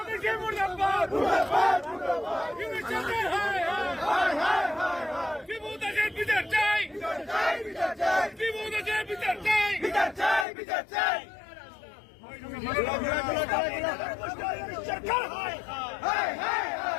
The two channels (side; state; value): right; drops out; at 10.5 s